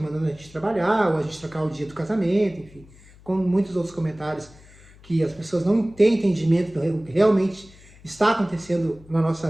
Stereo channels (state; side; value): noise; left; hum, 24 dB below the sound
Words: a gente trabalhar, ou a gente trocar o dia do casamento, enfim. Com muitos outros comentários que as pessoas não têm entendimento do que realmente está acontecendo na nossa